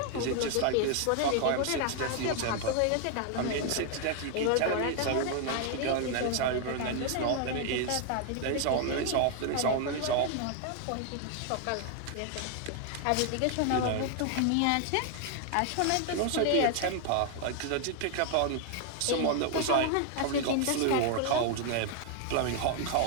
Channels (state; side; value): different; both; correlation 0.00